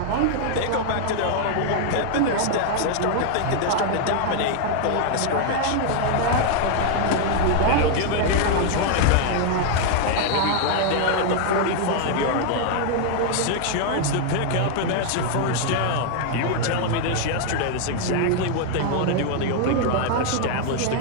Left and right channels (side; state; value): both; different; correlation 0.00